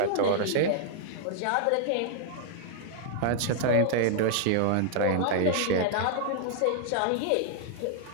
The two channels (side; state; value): both; different; correlation -0.01